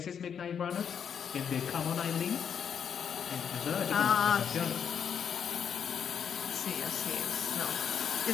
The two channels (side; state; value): right; quieter; 7.7 dB